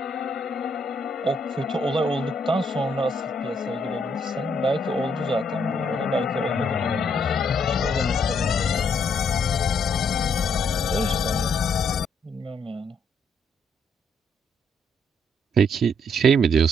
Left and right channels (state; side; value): normal; both; correlation 0.72